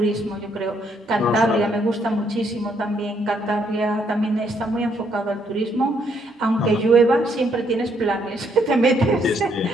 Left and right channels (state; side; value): normal; both; correlation 0.71